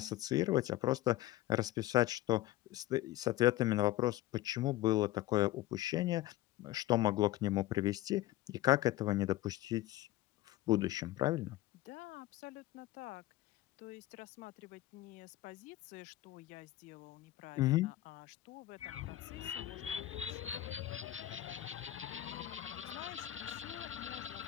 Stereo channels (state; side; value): quieter; right; 15.4 dB